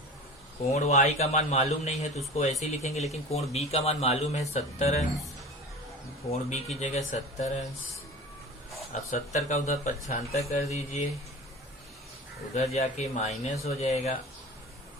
कोण y का मान मालूम नहीं है तो उसको ऐसे ही लिखेंगे, लेकिन कोण b का मान मालूम है 70 अंश, कोण b की जगह 70 अंश। अब 70 का उधर 75 कर दीजिए, उधर जाके माइनस हो जाएगा,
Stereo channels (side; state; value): both; normal; correlation 0.36